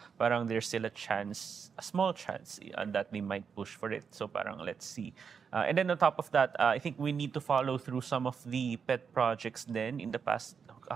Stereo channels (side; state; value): left; quieter; 6.4 dB